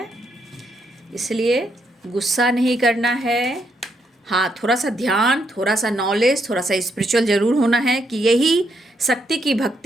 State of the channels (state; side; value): normal; both; correlation 0.76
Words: इसलिए गुस्सा नहीं करना है। हाँ, थोड़ा सा ध्यान, थोड़ा सा नॉलेज, थोड़ा सा स्पिरिचुअल ज़रूर होना है कि यही शक्ति की